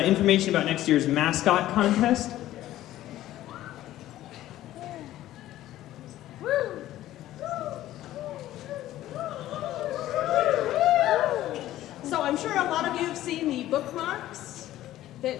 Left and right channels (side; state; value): right; quieter; 14.2 dB